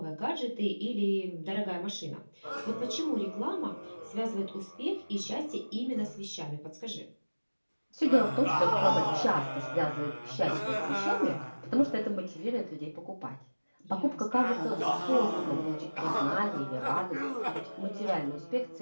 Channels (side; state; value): both; inverted; correlation -1.00